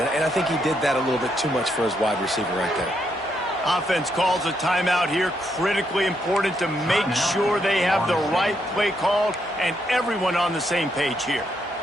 I think he did that a little bit too much for his wide receiver right there. Offense calls a timeout here. Critically important to make sure they have the right play called and everyone on the same page here.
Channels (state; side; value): normal; both; correlation 0.77